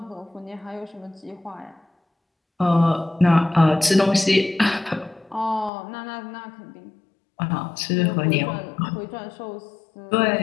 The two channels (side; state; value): right; drops out; at 5.7 s